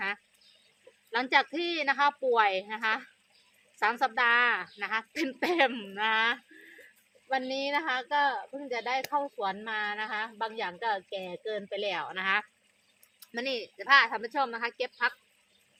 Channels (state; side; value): identical; both; correlation 1.00